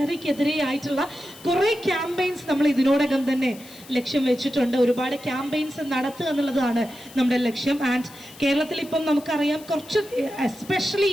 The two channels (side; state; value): left; noise; hiss, 20 dB below the sound